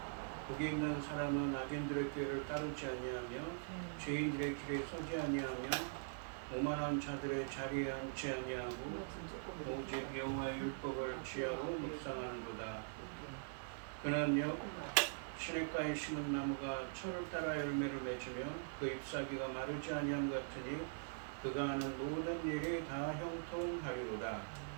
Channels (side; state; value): left; silent; digital silence